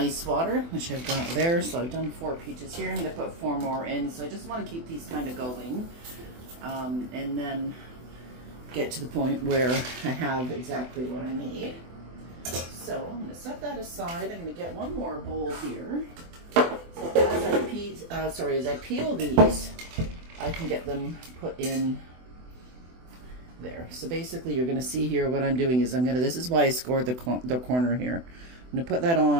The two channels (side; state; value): left; late; 24 ms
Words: water, which I've got there. So I've done 4 peaches here. I'm going to put 4 more in. So I just want to keep these kind of going. And then get to the point where I have exactly what I need. So I'm going to set that aside. I'm going to get one more bowl here. So as I peel these, I can get them put in there. So basically you're going to see here what I'm doing is this is why I scored the corner here. I'm going to put that